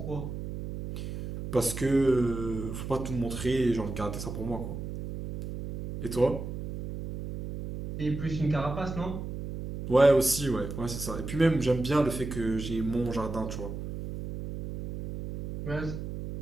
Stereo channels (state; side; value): noise; right; hum, 7 dB below the sound